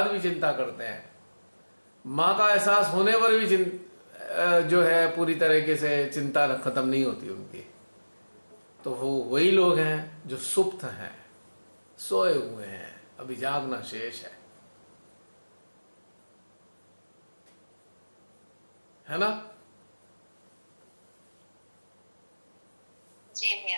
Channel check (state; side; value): inverted; both; correlation -1.00